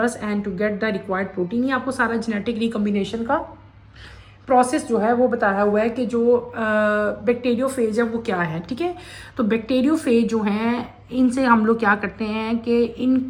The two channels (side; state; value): both; identical; correlation 1.00